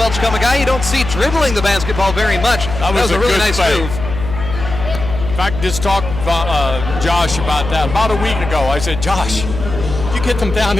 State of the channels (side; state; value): left; noise; hum, 7 dB below the sound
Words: a guy you don't see dribbling the basketball very much. That was a really nice move. In fact, just talked to Josh about that. About a week ago, I said, Josh, you get them down